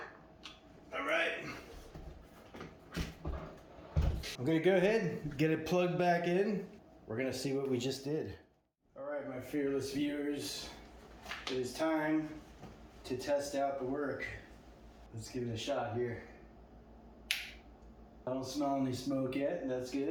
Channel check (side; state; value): both; identical; correlation 1.00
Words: Alright. I'm gonna go ahead and get it plugged back in. We're gonna see what we just did. Alright, my fearless viewers, it is time to test out the work. Let's give it a shot here. I don't smell any smoke yet, that's